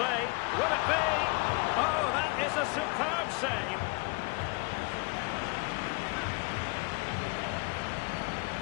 Will it be? Oh, that is a superb save.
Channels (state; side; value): quieter; right; 28.6 dB